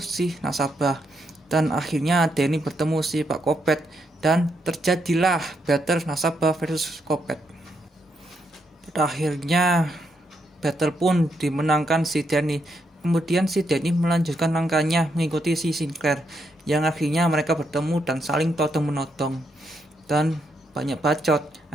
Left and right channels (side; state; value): both; normal; correlation 0.79